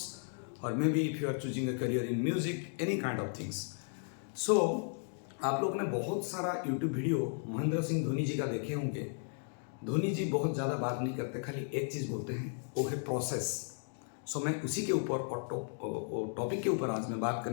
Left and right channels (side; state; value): right; silent; 54 dB below the other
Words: or maybe if you are choosing a career in music, any kind of things. सो आप लोग ने बहुत सारा YouTube video Mahendra Singh Dhoni जी का देखे होंगे। धोनी जी बहुत ज़्यादा बात नहीं करते, खाली एक चीज़ बोलते हैं, वो है प्रोसेस। सो मैं उसी के ऊपर और टॉपिक के ऊपर आज मैं बात